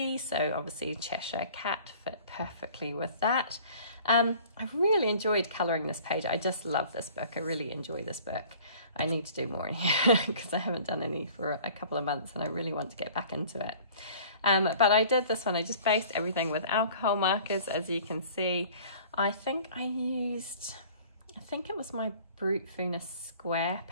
so obviously Cheshire Cat fit perfectly with that. I've really enjoyed colouring this page. I just love this book. I really enjoy this book. I need to do more in here because I haven't done any for a couple of months and I really want to get back into it. But I did this one, I just based everything with alcohol markers, as you can see. I think it was my Brute Venus square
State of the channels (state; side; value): inverted; both; correlation -0.49